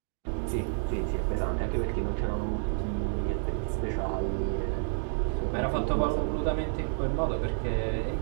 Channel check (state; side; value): silent; left; digital silence